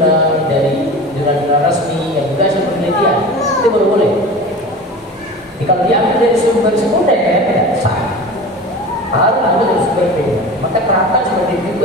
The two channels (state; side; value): normal; both; correlation 0.34